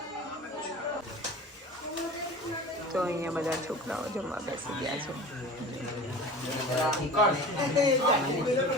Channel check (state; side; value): normal; both; correlation 0.37